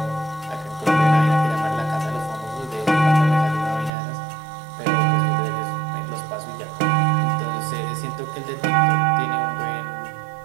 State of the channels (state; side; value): drops out; left; at 3.9 s